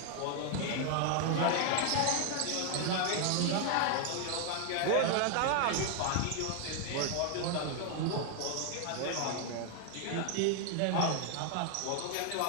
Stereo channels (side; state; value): both; different; correlation 0.00